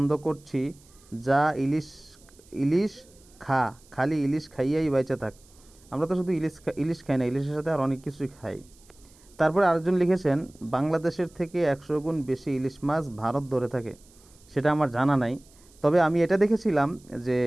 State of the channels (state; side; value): noise; right; hiss, 28 dB below the sound